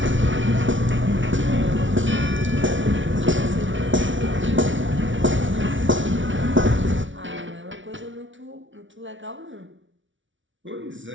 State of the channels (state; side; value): late; left; 0.56 ms